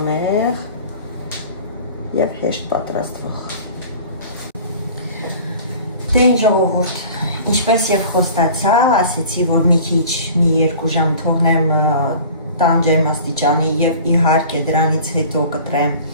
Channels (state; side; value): inverted; both; correlation -0.43